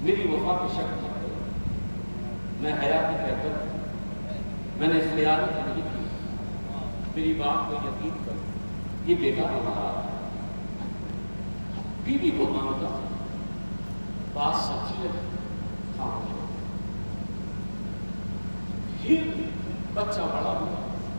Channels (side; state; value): both; inverted; correlation -1.00